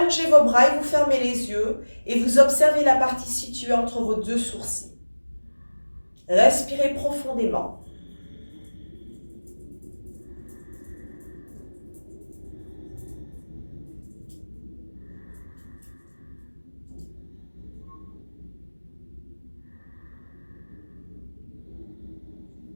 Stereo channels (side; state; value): both; inverted; correlation -1.00